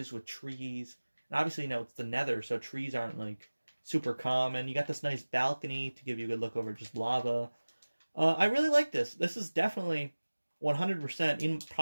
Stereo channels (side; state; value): both; inverted; correlation -1.00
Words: with trees. And obviously, it's the Nether, so trees aren't like super common. You got this nice balcony to give you a good look over just lava. I really like this. This is definitely 100% in